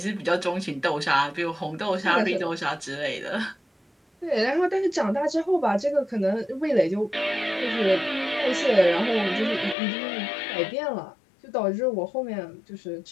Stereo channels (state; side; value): drops out; right; at 9.8 s